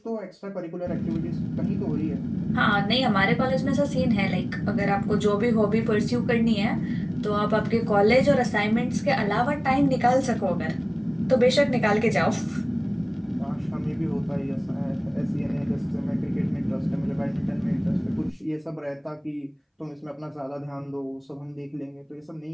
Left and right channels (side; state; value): both; identical; correlation 1.00